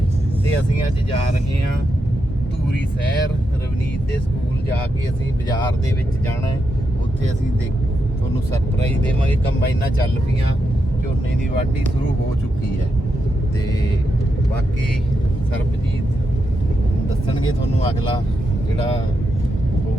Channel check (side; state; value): both; normal; correlation 0.84